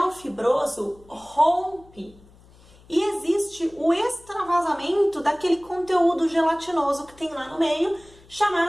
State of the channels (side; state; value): left; noise; hum, 26 dB below the sound